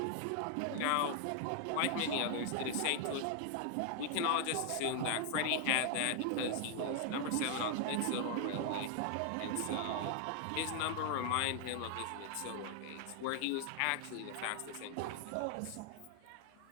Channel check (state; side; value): different; both; correlation 0.00